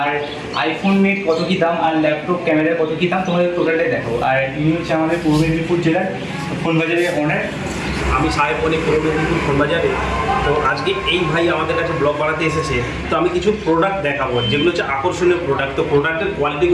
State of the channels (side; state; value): both; identical; correlation 1.00